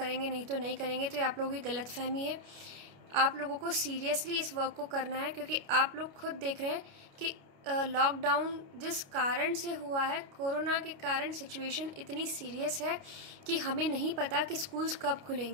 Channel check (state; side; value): late; left; 29 ms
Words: नहीं तो नहीं करेंगे, तो ये आप लोगों की गलतफहमी है। आप लोगों को सीरियसली इस वर्क को करना है क्योंकि आप लोग खुद देख रहे हैं कि लॉकडाउन जिस कारण से हुआ है, कोरोना के कारण सिचुएशन इतनी सीरियस है कि हमें नहीं पता कि स्कूल्स कब